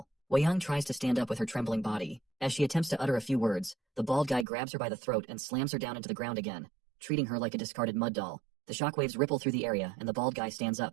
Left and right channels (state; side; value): drops out; left; at 4.5 s